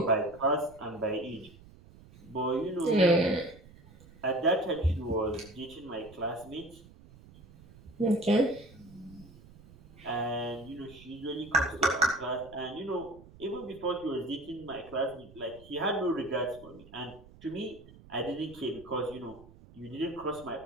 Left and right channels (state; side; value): noise; right; rumble, 21 dB below the sound